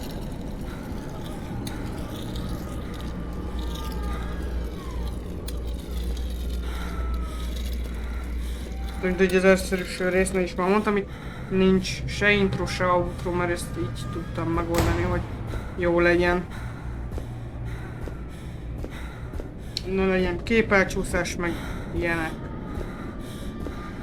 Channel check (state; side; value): identical; both; correlation 1.00